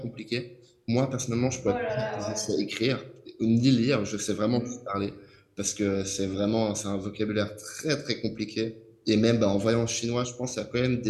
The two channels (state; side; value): identical; both; correlation 1.00